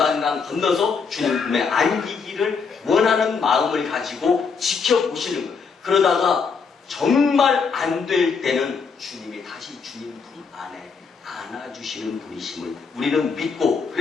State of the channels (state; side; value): quieter; right; 5.4 dB